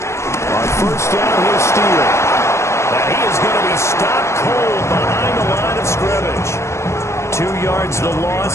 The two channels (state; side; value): late; right; 0.13 ms